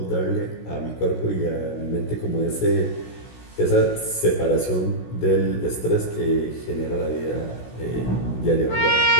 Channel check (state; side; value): late; right; 16 ms